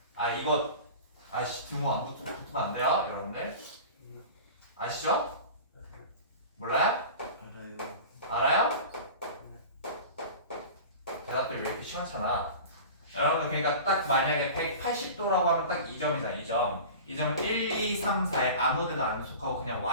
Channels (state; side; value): inverted; both; correlation -0.35